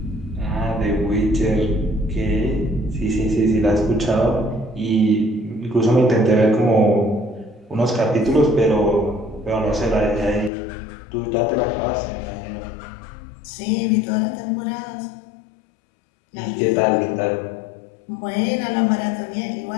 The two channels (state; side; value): drops out; right; at 10.5 s